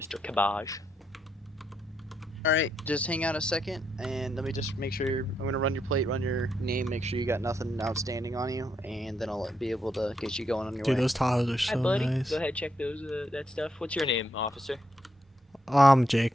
Cabbage. Alright, just hang out a second, and let me just make sure I'm gonna run your plate, run your name, make sure you got nothing outstanding on you, and then I'll be able to get you going on your Dude, way. those Tahoes are so Hi, buddy. nice. Go ahead, check those that stuff. What's your name, officer?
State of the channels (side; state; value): both; normal; correlation 0.79